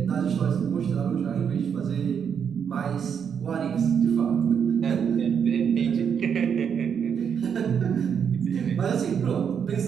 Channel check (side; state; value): left; quieter; 7.4 dB